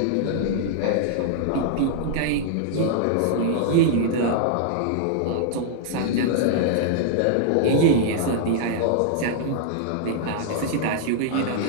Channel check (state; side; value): different; both; correlation -0.01